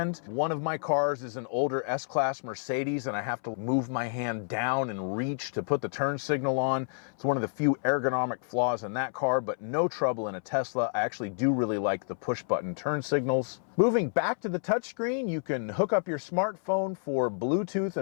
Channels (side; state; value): right; silent; 58 dB below the other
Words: One of my cars is an older S-Class Mercedes, and I have to move my hand down and reach to put the turn signal on. It's one of the few ergonomic flaws in that car, but no trouble in a Tesla. I actually do really like the push-button turn signals. Moving back to the touchscreen, you can hook up your smartphone for Bluetooth